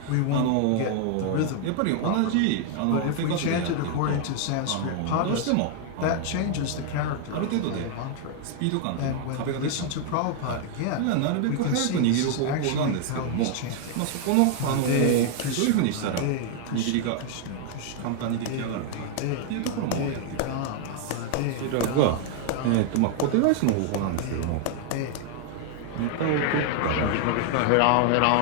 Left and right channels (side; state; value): both; different; correlation 0.00